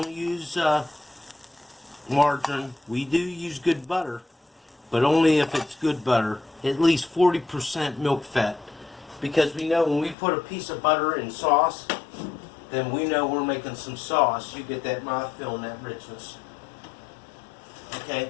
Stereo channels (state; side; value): drops out; right; at 10.2 s